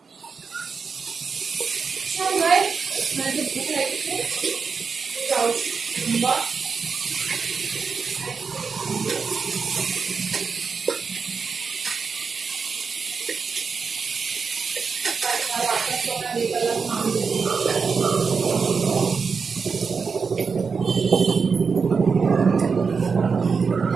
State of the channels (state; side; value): quieter; left; 5.3 dB